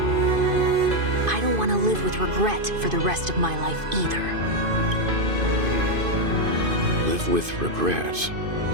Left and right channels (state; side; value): late; left; 2.5 ms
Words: I don't want to live with regret for the rest of my life either. Live with regret?